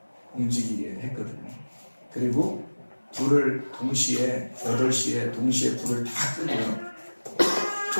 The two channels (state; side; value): inverted; both; correlation -1.00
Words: 움직이게 했거든요. 그리고 불을 동시에 8시에 동시에 불을 다